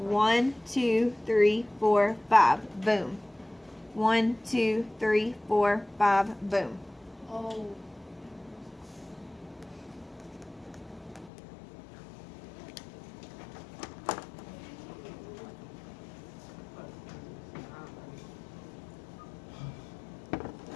2, 3, 4, 5. Boom. 1, 2, 3, 4, 5. Boom. Oh.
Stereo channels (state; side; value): drops out; right; at 11.3 s